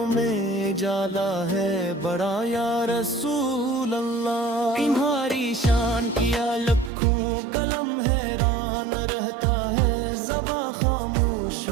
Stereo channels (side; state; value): left; drops out; at 6.9 s